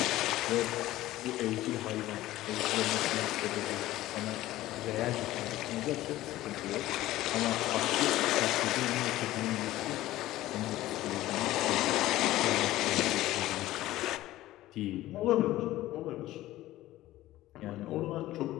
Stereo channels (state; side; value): quieter; right; 15.8 dB